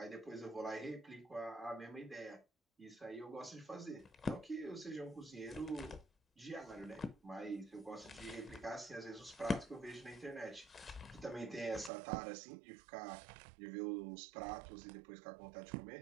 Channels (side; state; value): left; drops out; at 11.9 s